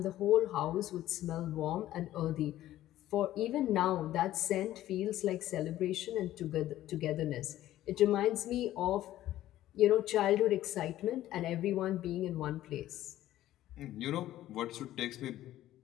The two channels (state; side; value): quieter; right; 13.9 dB